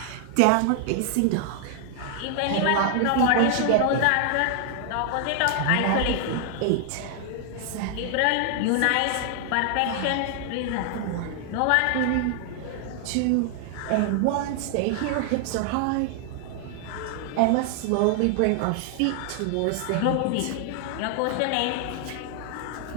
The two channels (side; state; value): both; different; correlation 0.00